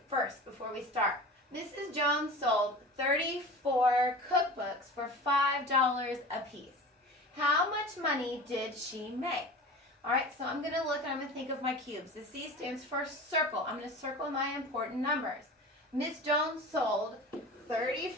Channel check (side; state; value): both; normal; correlation 0.36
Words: first before we start. Mrs. Jones sold 34 cookbooks for $5 a piece. How much money did she make? All right, so I'm going to look and I'm going to think of my cubes. The C stands for circle. I'm going to circle my important numbers. Miss Jones sold